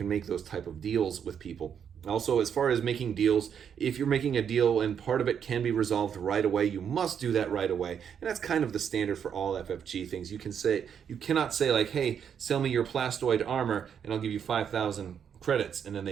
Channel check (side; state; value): left; quieter; 7.9 dB